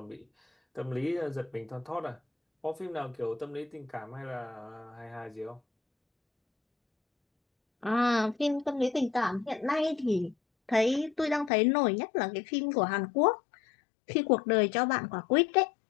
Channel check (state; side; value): drops out; right; at 11.5 s